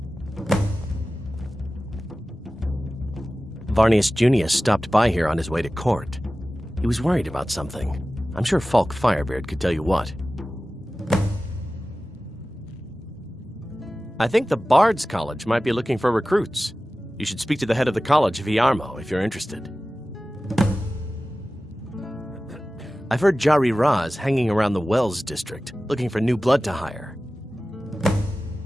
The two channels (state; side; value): normal; both; correlation 0.96